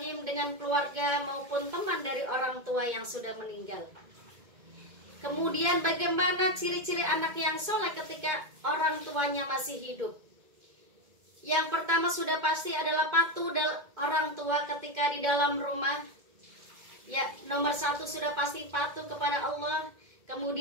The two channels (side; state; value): left; late; 2.2 ms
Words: dengan keluarga maupun teman dari orang tua yang sudah meninggal. Kemudian bagaimana ciri-ciri anak yang soleh ketika orang tuanya masih hidup? Yang pertama sudah pasti adalah patuh orang tua ketika di dalam rumah. Ya, nomor satu sudah pasti patuh kepada Allah.